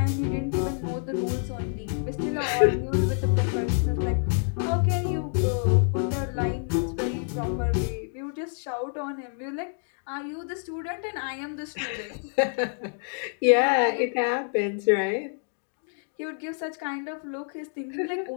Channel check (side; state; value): right; silent; 60 dB below the other